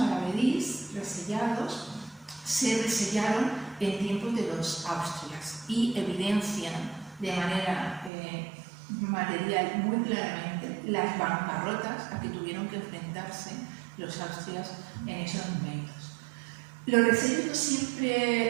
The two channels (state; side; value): drops out; left; at 8.1 s